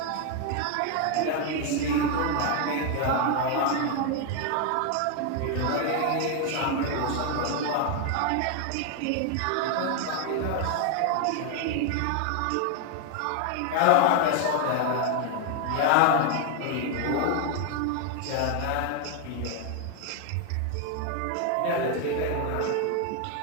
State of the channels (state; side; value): different; both; correlation 0.01